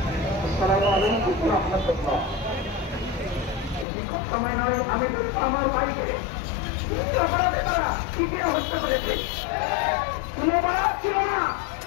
সময় নয়, আমি আমার ভাইকে হত্যা করেছে। কোনো অপরাধ ছিল না,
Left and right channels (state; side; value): drops out; right; at 3.9 s